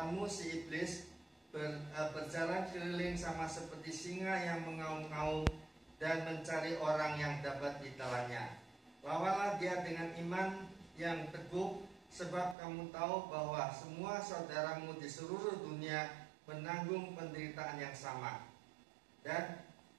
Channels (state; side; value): drops out; left; at 12.6 s